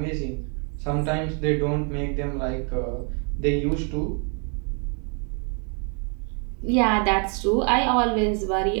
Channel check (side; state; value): left; quieter; 38.9 dB